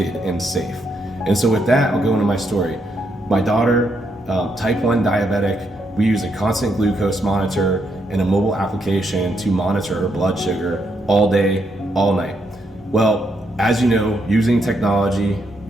and safe. And so with that, I'll go into my story. My daughter, type 1 diabetic, we use a constant glucose monitor and a mobile application to monitor her blood sugar all day, all night. Well, as you know, using technology,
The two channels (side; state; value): both; normal; correlation 0.78